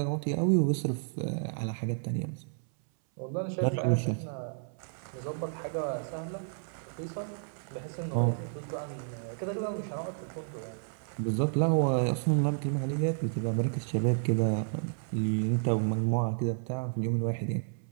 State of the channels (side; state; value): left; silent; 57 dB below the other